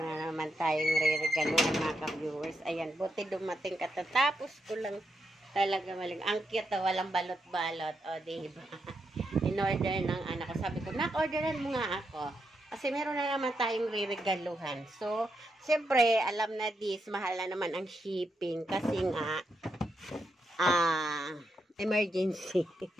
na naman tayong re-regaluhan, mga ka-viewers. Ayan, buti dumating katatapos ko lang talaga maling. Ang cute, walang balot-balot. O, diba? In-order ng anak ko. Sabi ko, nak-orderan mo nga ako. Kasi meron na naman tayong re-regaluhan. So, siyempre, alam na this, mahal na naman ang shipping. Kasi nga, emergency.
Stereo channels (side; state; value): both; normal; correlation 0.83